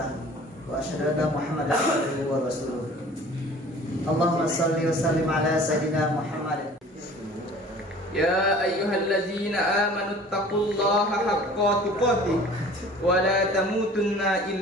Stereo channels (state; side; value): normal; both; correlation 0.47